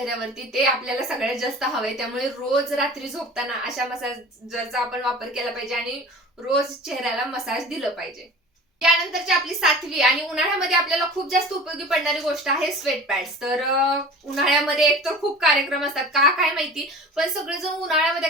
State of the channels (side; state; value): both; normal; correlation 0.39